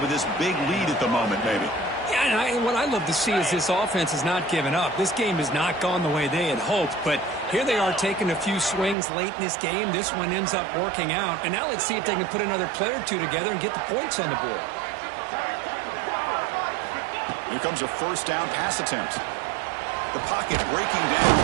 this big lead at the moment, maybe. Yeah, and what I love to see is this offense has not given up. This game has not gone the way they had hoped, but here they are taking a few swings late in this game. This one ends up working out, and now let's see if they can put another play or two together and get the points on the board. Here comes a 1st down pass attempt. The pocket breaking down.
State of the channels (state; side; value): drops out; left; at 9.0 s